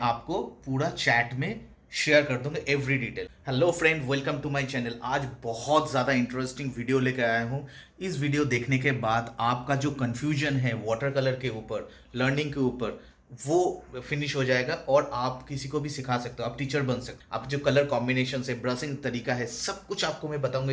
आपको पूरा चैट में शेयर कर दूंगा every detail. Hello friend, welcome to my channel. आज बहुत ज़्यादा इंटरेस्टिंग वीडियो लेकर आया हूँ। इस वीडियो देखने के बाद आपका जो कंफ्यूजन है वाटर कलर के ऊपर, लर्निंग के ऊपर, वो फिनिश हो जाएगा और आप किसी को भी सिखा सकते हो। आप टीचर बन सकते हो। आप जो कलर कॉम्बिनेशन है, ब्रशिंग तरीका है, सब कुछ आपको मैं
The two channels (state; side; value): identical; both; correlation 1.00